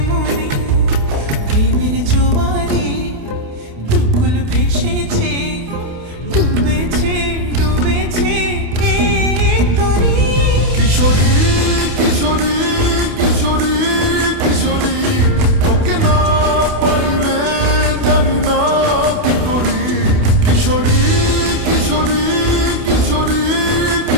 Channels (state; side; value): late; left; 28 ms